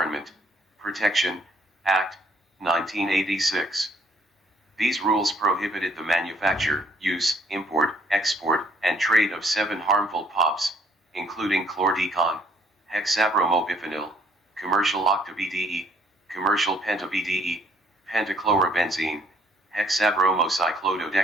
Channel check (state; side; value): normal; both; correlation 0.63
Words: Protection Act, 1986. These rules prohibited the manufacture, use, import, export, and trade of 7 harmful POPs, including chlordecone, hexabromobiphenyl, commercial octa-BDE, commercial penta-BDE, pentachlorobenzene,